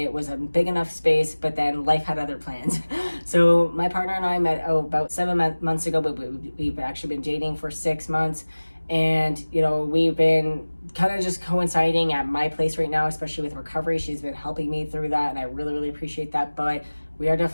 was a big enough space, but then life had other plans. So my partner and I met about 7 months ago, but we've actually been dating for 6 months. And, you know, we've been kind of just coinciding at my place right now, especially with recovery. She's been helping me through that, and I really, really appreciate that. But we are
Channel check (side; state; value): both; inverted; correlation -1.00